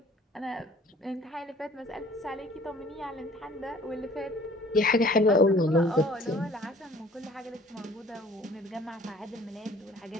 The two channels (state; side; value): normal; both; correlation 0.52